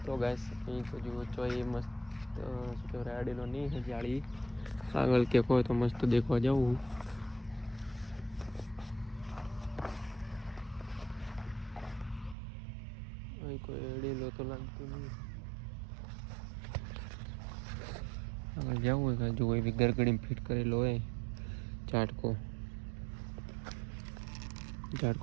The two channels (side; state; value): left; drops out; at 12.4 s